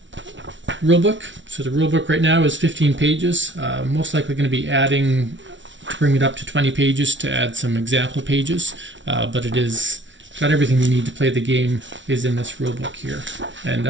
rulebook. So the rulebook right now is 15 pages. Most likely going to be adding to bring it up to 20 pages to add some example pages, but it is got everything you need to play the game is in this rulebook here. And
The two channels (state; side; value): late; left; 0.55 ms